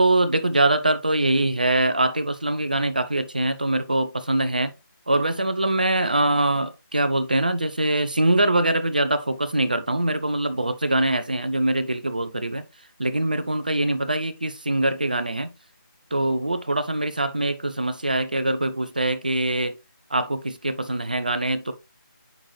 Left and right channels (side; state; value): both; inverted; correlation -0.79